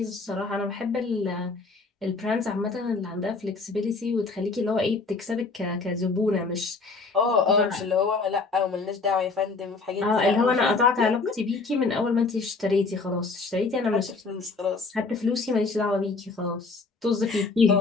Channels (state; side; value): quieter; right; 4.0 dB